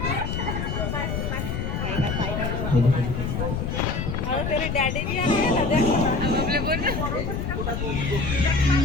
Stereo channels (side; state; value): left; noise; rumble, 2 dB below the sound